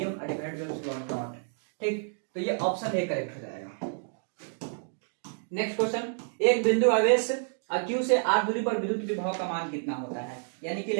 divided by epsilon not. ठीक, तो ये ऑप्शन ए करेक्ट हो जाएगा। नेक्स्ट क्वेश्चन, एक बिंदु आवेश Q से r दूरी पर विद्युत विभव का मान कितना होता है, यानी कि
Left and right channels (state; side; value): silent; left; digital silence